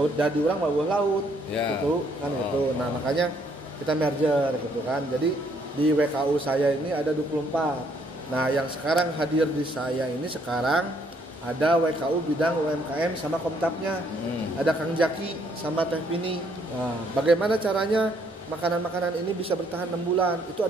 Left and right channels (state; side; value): normal; both; correlation 0.68